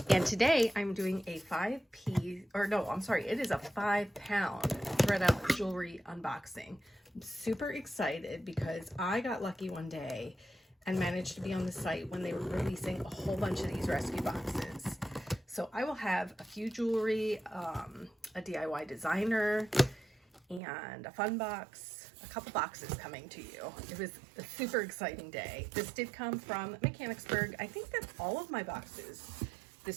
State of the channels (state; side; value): drops out; left; at 20.6 s